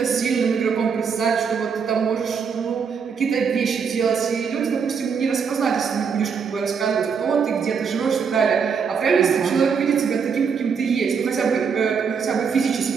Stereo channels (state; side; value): quieter; left; 6.2 dB